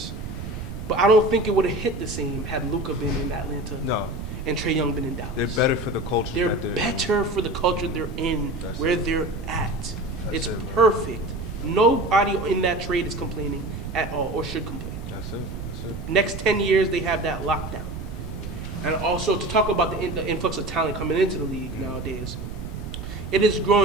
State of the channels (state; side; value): noise; right; rumble, 8 dB below the sound